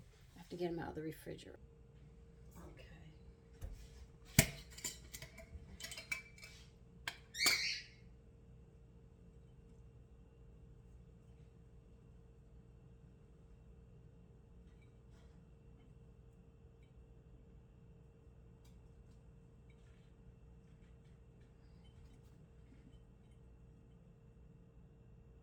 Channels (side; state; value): both; identical; correlation 1.00